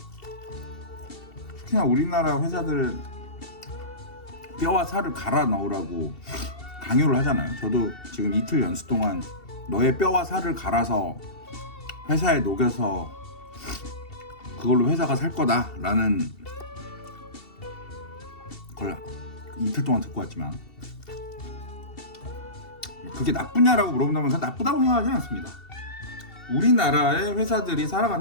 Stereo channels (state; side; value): late; right; 2.7 ms